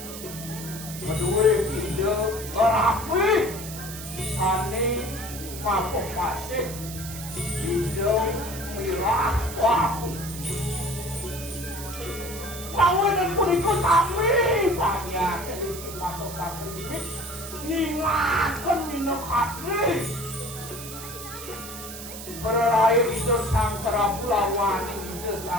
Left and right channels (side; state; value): right; noise; hiss, 11 dB below the sound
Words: Kedua hidup rapi sani mampu pasif hidup mirah waktu. Lawan dan purikut kami banyak jadi mampu pasif ningatkan minum hati. Berlain hidup sang Prabu lawan hidup